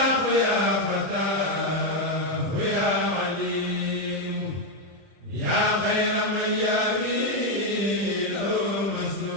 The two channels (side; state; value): left; late; 30 ms